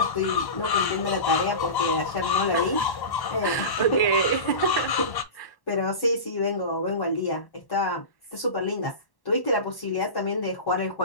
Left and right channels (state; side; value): late; right; 1.1 ms